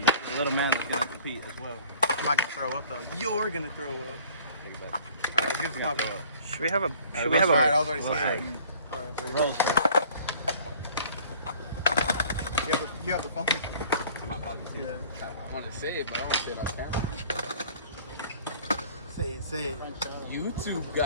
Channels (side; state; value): both; inverted; correlation -0.51